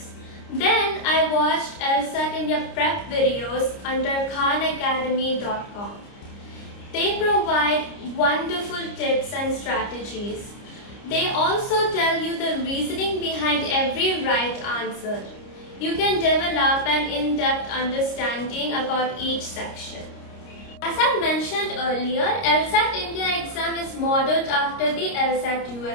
Then I watched LSAT India prep videos under khanacademy.com. They provide wonderful tips and strategies. They also tell you the reasoning behind every right answer. You can develop an in-depth understanding about each section. As I mentioned earlier, LSAT India exam is modeled after the LSAT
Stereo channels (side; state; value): right; late; 29 ms